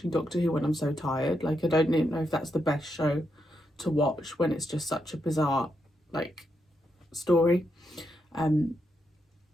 Doctor Who when I'm so tired. Like, I don't know if that's the best show to watch when it's just such a bizarre, like, story.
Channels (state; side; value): normal; both; correlation 0.82